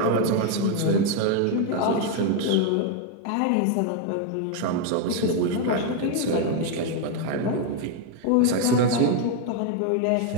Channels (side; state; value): both; different; correlation 0.01